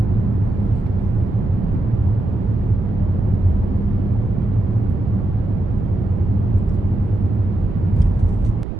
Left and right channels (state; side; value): noise; right; rumble, 5 dB below the sound